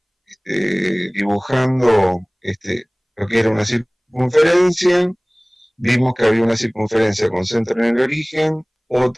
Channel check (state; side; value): identical; both; correlation 1.00